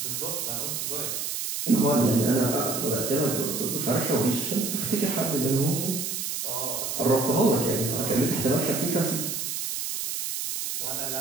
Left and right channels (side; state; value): right; noise; hiss, 3 dB below the sound